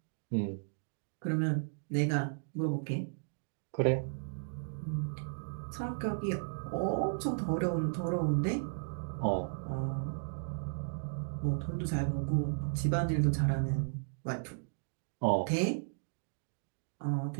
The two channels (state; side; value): silent; left; digital silence